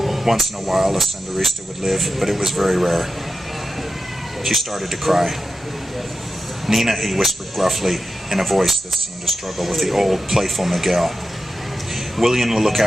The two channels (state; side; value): normal; both; correlation 0.91